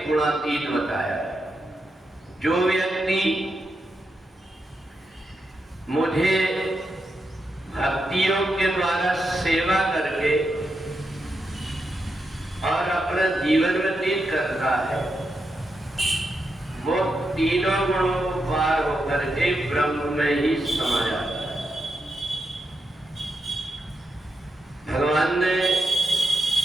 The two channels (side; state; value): both; normal; correlation 0.85